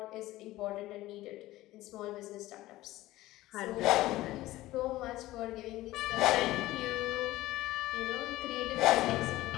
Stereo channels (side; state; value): right; quieter; 16.9 dB